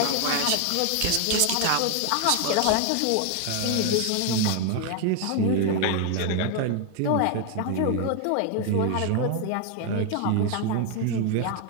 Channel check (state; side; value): different; both; correlation 0.01